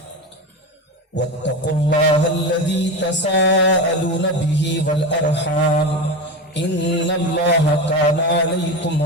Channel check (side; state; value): both; normal; correlation 0.22